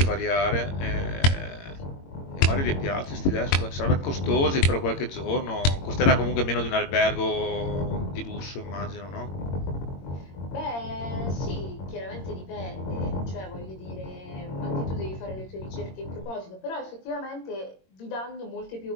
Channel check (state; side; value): late; right; 22 ms